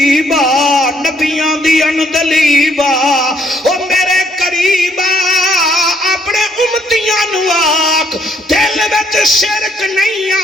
نبیاں دی اندلیبا، او میرے قریبا اپنے امتیاں نو آکھ دل وچ شرک نہیں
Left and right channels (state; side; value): normal; both; correlation 0.69